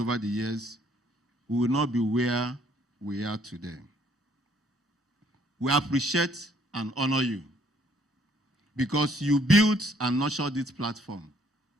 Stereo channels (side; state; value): both; normal; correlation 0.64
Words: the years, we will not be where we are today. We appreciate and honor you because you built and nurtured this platform